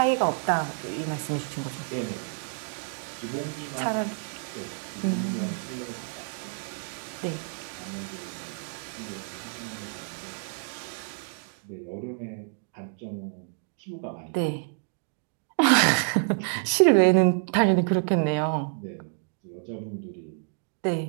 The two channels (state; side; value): silent; left; 59 dB below the other